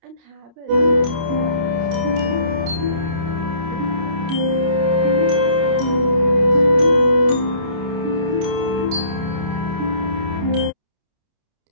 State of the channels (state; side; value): late; left; 29 ms